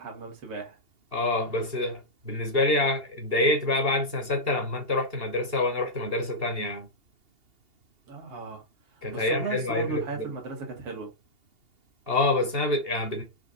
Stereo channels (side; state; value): left; late; 2.8 ms